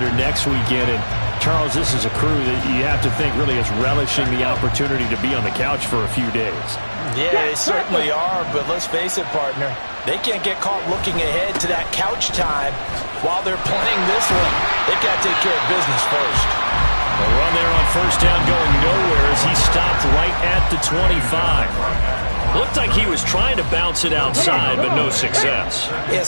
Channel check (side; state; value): both; inverted; correlation -1.00